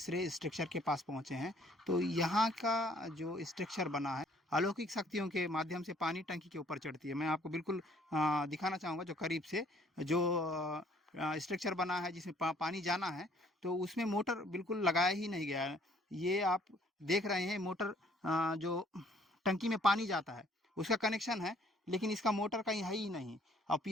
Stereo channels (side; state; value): both; normal; correlation 0.61